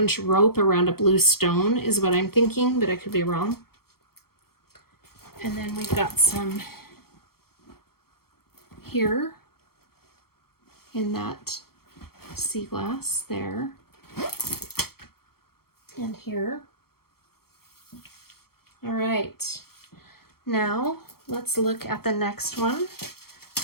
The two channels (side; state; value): right; late; 0.94 ms